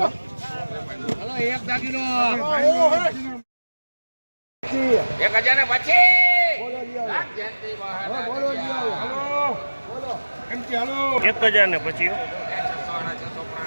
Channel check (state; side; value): inverted; both; correlation -1.00